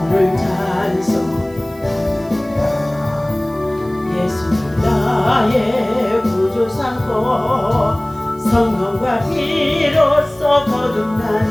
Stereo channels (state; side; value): noise; right; hiss, 26 dB below the sound